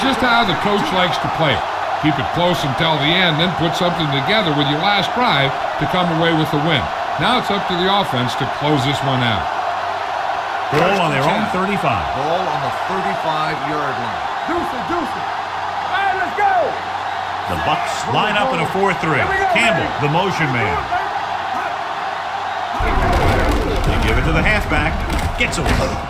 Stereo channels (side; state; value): both; identical; correlation 1.00